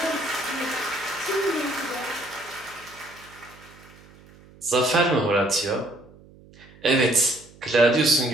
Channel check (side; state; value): right; noise; hum, 24 dB below the sound